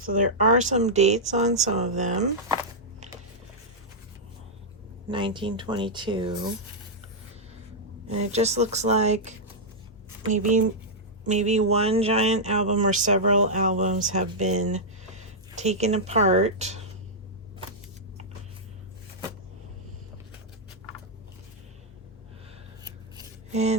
there are some dates on some of them. 1922. And it just looks like maybe one giant album or several albums have been taken apart.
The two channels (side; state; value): both; normal; correlation -0.07